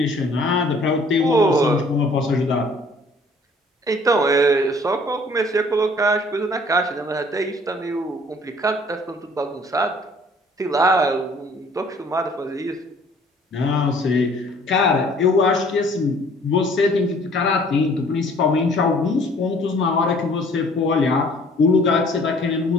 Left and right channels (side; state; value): both; normal; correlation 0.55